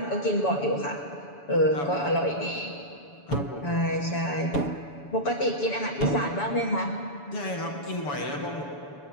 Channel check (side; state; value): right; late; 7.0 ms